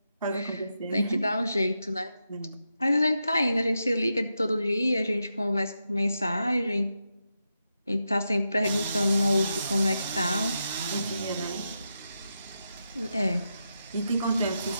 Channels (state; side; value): inverted; both; correlation -0.86